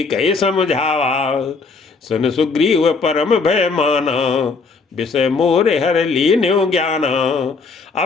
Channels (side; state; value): right; quieter; 4.4 dB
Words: कहे समझावा। सुन सुग्रीव परम भय माना, विषय मोरे हर लीन्यो ज्ञाना।